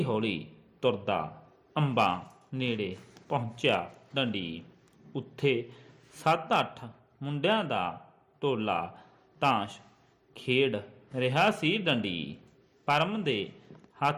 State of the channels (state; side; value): identical; both; correlation 1.00